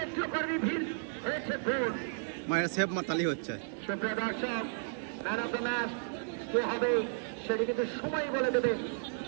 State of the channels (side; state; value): left; silent; 56 dB below the other